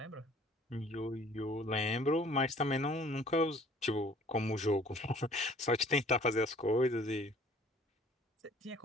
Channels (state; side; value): normal; both; correlation 0.53